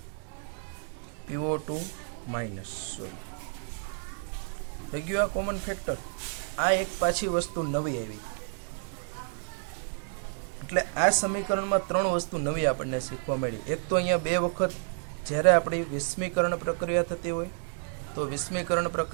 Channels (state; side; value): silent; left; 58 dB below the other